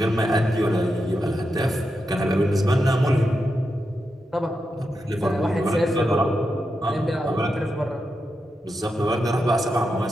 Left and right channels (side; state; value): both; normal; correlation 0.87